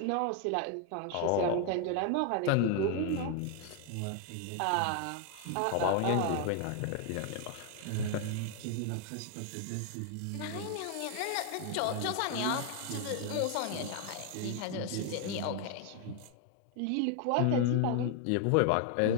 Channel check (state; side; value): different; both; correlation 0.00